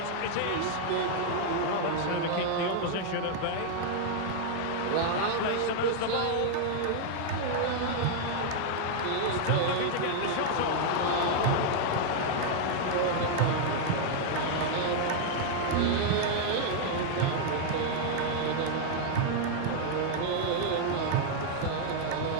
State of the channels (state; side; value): different; both; correlation 0.00